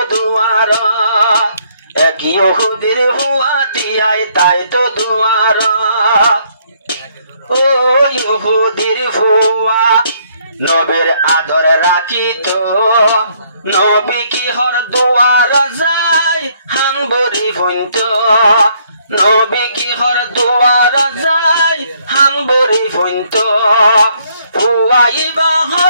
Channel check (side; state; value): both; inverted; correlation -0.68